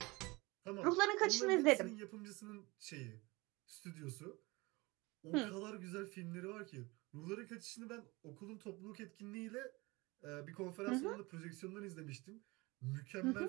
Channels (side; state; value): left; quieter; 23.8 dB